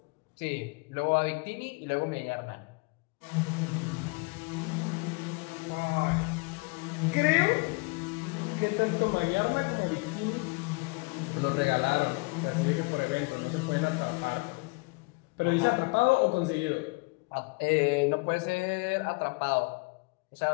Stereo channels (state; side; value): quieter; right; 28.0 dB